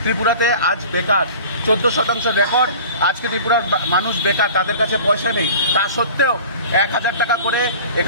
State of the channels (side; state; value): both; inverted; correlation -0.41